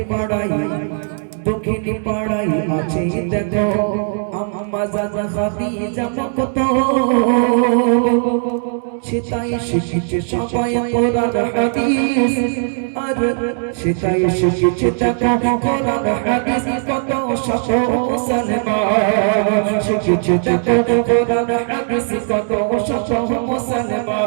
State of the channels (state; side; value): silent; left; digital silence